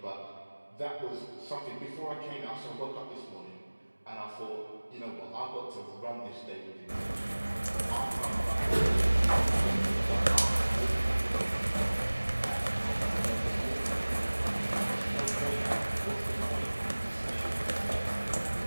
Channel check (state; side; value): inverted; both; correlation -1.00